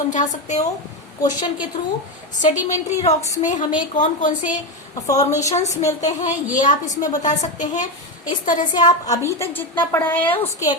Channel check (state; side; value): normal; both; correlation 0.12